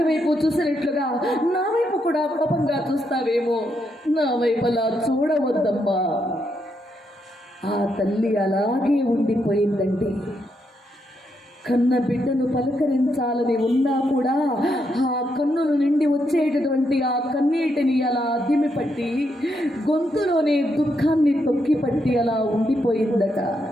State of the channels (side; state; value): both; normal; correlation 0.80